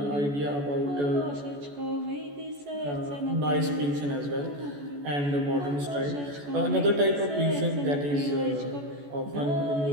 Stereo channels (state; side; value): late; left; 14 ms